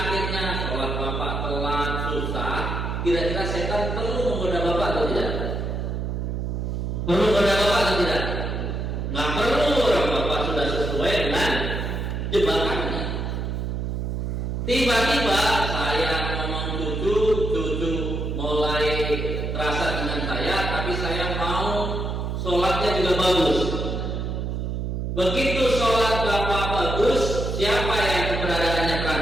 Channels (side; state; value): right; noise; hum, 2 dB below the sound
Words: sholat bapak telat, susah. Kira-kira setan perlu menggoda bapak atau tidak? Perlu menggoda bapak atau tidak? Nggak perlu, orang bapak sudah sesuai dengan jebakannya. Tiba-tiba saya ngomong cucu mulai terasa dengan saya, tapi saya mau sholatnya juga bagus. Begitu sholat bapak bagus, siapa yang keberadaannya